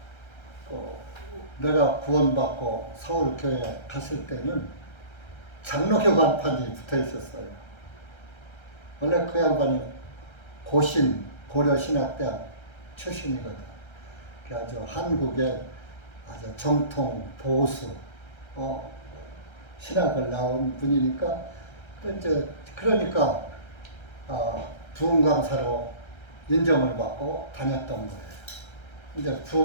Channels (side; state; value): right; late; 1.3 ms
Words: 내가 구원받고 서울교회 갔을 때는 장로교 간판이 붙어 있었어요. 원래 그 양반이 고려신학대학 출신이거든. 아주 한국의 아주 정통 보수 신학을 나온 분이니까 이제 그러니까 부흥 강사로 인정을 받고 다녔던 거예요. 이제